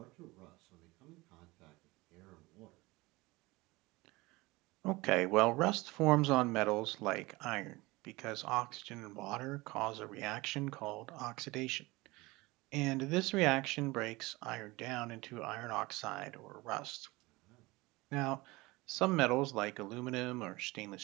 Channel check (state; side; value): quieter; left; 22.0 dB